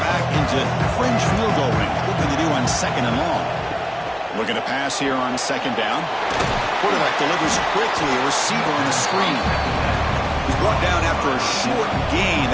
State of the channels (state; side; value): identical; both; correlation 1.00